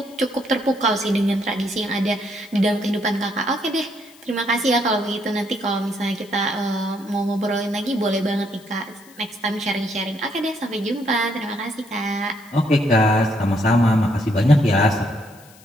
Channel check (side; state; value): left; noise; hiss, 25 dB below the sound